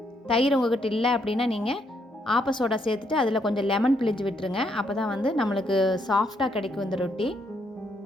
தயிர் உங்கள்கிட்ட இல்லை அப்படின்னா நீங்கள் ஆப்ப சோடா சேர்த்துட்டு அதில் கொஞ்சம் லெமன் பிழிஞ்சு விட்டுருங்க. அப்போ தான் வந்து நம்மளுக்கு சாஃப்டாக கிடைக்கும் இந்த ரொட்டி.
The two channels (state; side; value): normal; both; correlation 0.74